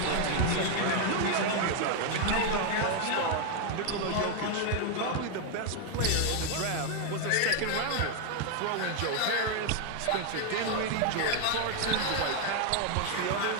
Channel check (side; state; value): both; different; correlation 0.00